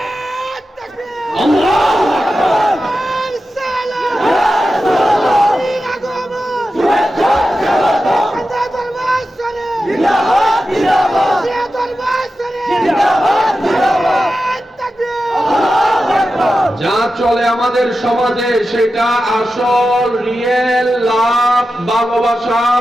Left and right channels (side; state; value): both; normal; correlation 0.91